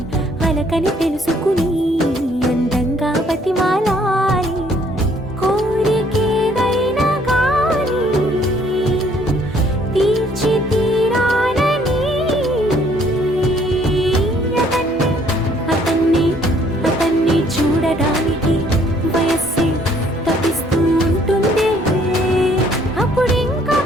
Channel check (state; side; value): normal; both; correlation 0.63